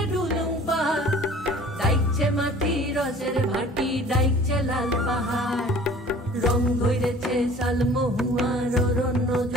ডুলুং পাহাড়, ডাইকছে মাটি রসের ভাটি, ডাইকছে লাল পাহাড়। রং ধরেছে শালমহুয়ার অরণ্য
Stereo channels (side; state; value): both; normal; correlation 0.48